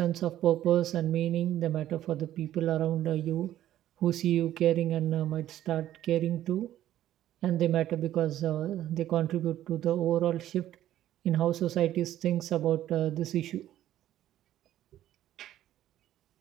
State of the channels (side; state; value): left; quieter; 12.7 dB